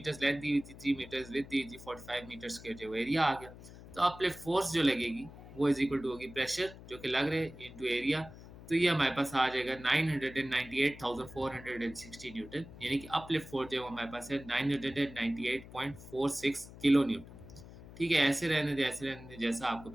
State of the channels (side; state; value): left; noise; hum, 17 dB below the sound